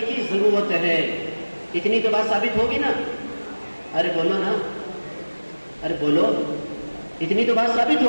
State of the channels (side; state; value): both; inverted; correlation -1.00